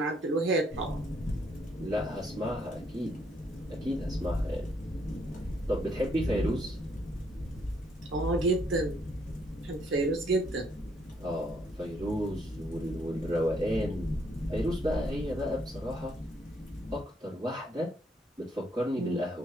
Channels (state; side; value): normal; both; correlation 0.71